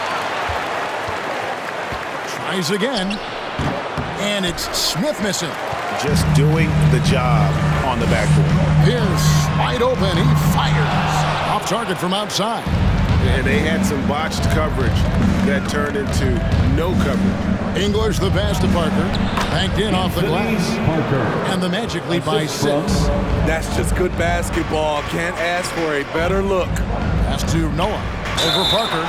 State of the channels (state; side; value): identical; both; correlation 1.00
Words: Tries again, and it's Smith missing. Just doing the job on the backboard. Pierce wide open, he fires. Off target from outside. And they had some botched coverage that turned into no coverage. English the pass to Parker. Banked in off the glass. And the Magic lead by 6. That's just good basketball. Can't ask for a better look. Pass to Noah. Over Parker.